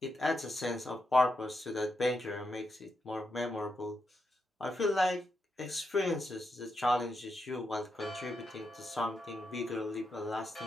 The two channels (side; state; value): both; normal; correlation 0.84